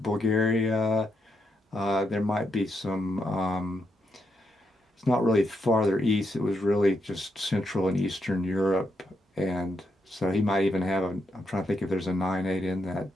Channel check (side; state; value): both; normal; correlation 0.81